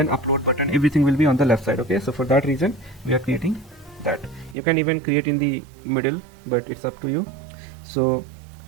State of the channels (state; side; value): drops out; left; at 4.5 s